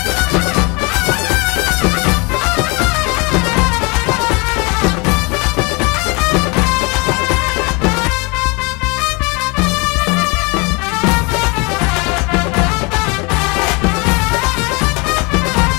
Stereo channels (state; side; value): quieter; right; 29.0 dB